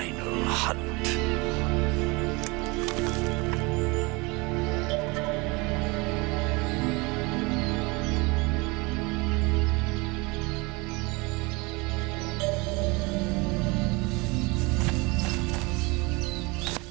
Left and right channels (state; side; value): quieter; left; 26.2 dB